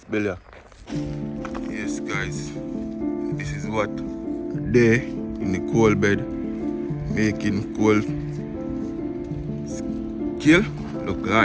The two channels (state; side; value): identical; both; correlation 1.00